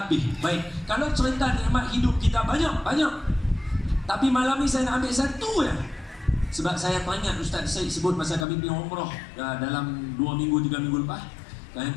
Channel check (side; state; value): right; drops out; at 8.5 s